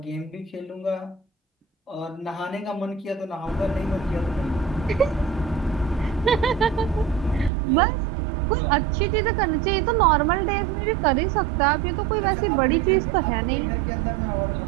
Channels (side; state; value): left; drops out; at 7.5 s